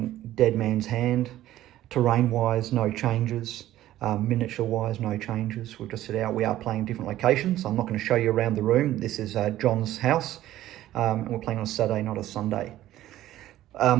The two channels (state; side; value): quieter; left; 14.0 dB